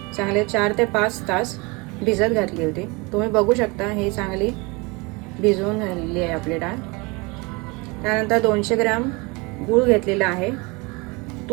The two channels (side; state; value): left; quieter; 27.0 dB